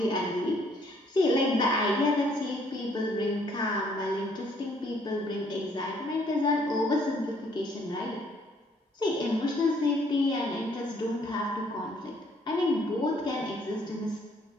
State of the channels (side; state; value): both; normal; correlation 0.65